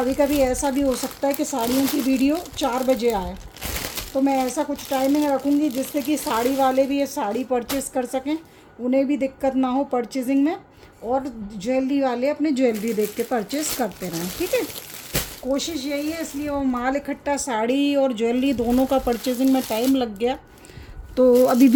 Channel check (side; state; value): both; identical; correlation 1.00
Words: कभी ऐसा भी हो सकता है कि साड़ियों की वीडियो 4 बजे आए। तो मैं ऐसा कुछ टाइमिंग रखूँगी जिससे कि साड़ी वाले भी ये साड़ी परचेज़ कर सकें, उन्हें भी दिक्कत ना हो परचेजिंग में, और ज्वेलरी वाले अपने ज्वेलरी देख के परचेज़ करते रहें। ठीक है, कोशिश यही है। इसलिए वो माल इकट्ठा, साड़ी और ज्वेलरी दोनों का परचेजिंग में टाइम लग गया, तो अभी